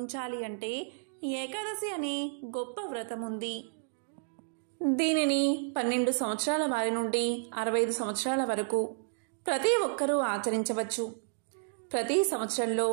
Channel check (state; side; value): silent; left; digital silence